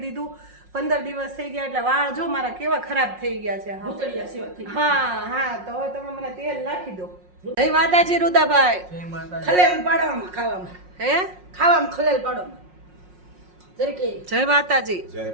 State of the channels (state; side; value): late; left; 5.5 ms